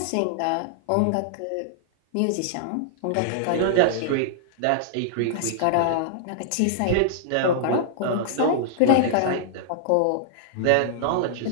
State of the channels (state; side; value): different; both; correlation -0.01